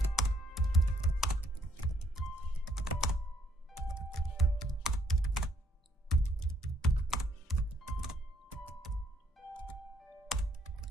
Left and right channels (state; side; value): normal; both; correlation 0.67